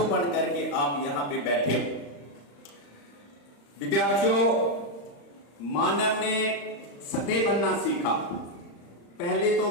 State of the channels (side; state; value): right; late; 35 ms